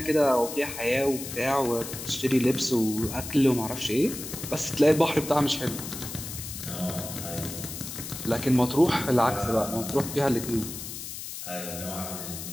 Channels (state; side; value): noise; left; hiss, 9 dB below the sound